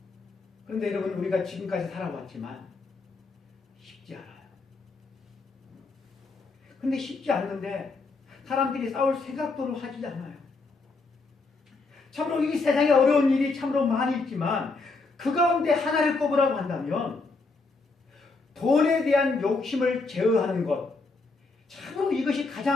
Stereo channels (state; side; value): quieter; right; 3.8 dB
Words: 그런데 여러분, 우리가 지금까지 살아왔지만 쉽지 않아요. 근데 쉽지 않는데 사람들이 싸울 생각도 하지 않아요. 참으로 이 세상에 어려운 일이 참으로 많이 있지만 그 가운데 하나를 꼽으라고 한다면 돈에 대한 욕심을 제어하는 것, 참으로 이것이